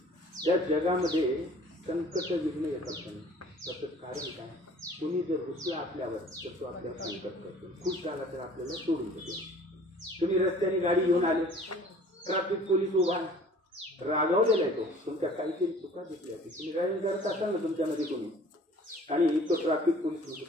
त्या जगामध्ये संकट विघ्न येतात. त्याचं कारण काय? कुणी जर रुसला आपल्यावर तर तो आपल्याला संकट करतो. खुश झाला तर आपल्याला सोडून देतो. तुम्ही रस्त्याने गाडी घेऊन आले, ट्रॅफिक पोलीस उभा रागावलेला आहे. तो तुमच्या काहीतरी चुका दिसल्या की तुम्ही ड्रायव्हिंग करत असाल ना तुमच्यामध्ये कोणी, आणि तो ट्रॅफिक पोलीस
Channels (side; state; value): both; normal; correlation 0.50